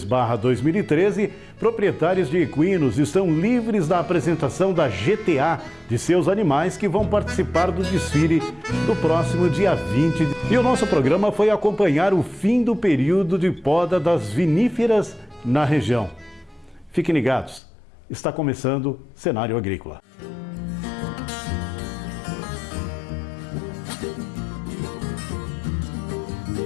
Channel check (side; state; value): right; drops out; at 17.6 s